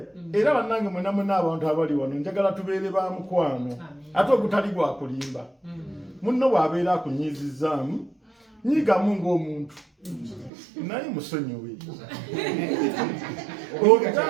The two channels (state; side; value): drops out; left; at 10.5 s